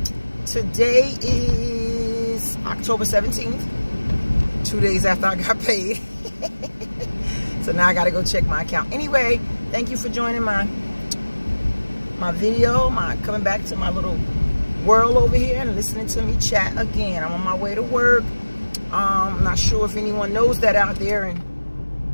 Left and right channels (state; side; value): inverted; both; correlation -1.00